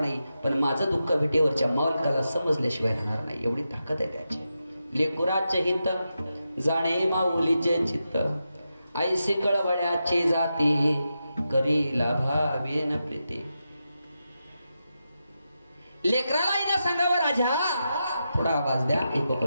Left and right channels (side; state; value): both; inverted; correlation -0.88